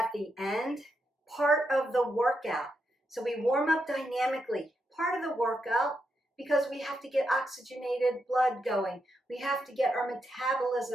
the end, part of the workout. So we warm up dynamically, part of the workout, because we have to get oxygenated blood going. We have to get our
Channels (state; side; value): normal; both; correlation 0.83